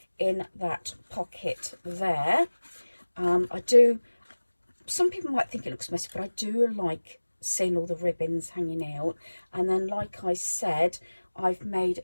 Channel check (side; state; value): both; inverted; correlation -1.00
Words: in that pocket there. I do some people might think it looks messy, but I do like seeing all the ribbons hanging out. And then, like I said, I've made